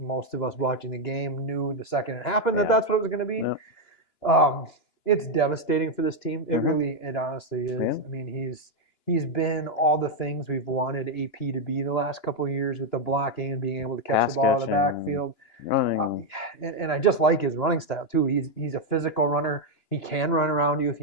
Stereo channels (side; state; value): right; late; 2.9 ms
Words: of us watching the game knew the second it happened that's what it was going to be. Yep. It's devastating for this team. It honestly is. Yeah. I mean, he's been all the things we've wanted AP to be the last couple of years with the blocking and being able to catch the ball in the backfield. Running. And I just like his running style too. He's a physical runner. He can run around you if